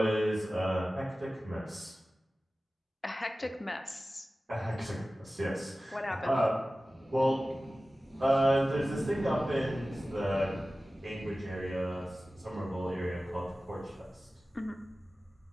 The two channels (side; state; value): both; normal; correlation 0.96